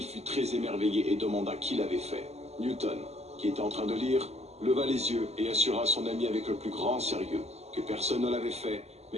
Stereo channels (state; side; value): late; left; 0.31 ms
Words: fut très émerveillé et demanda qui l'avait fait. Newton, qui était en train de lire, leva les yeux et assura son ami avec le plus grand sérieux que personne ne l'avait fait,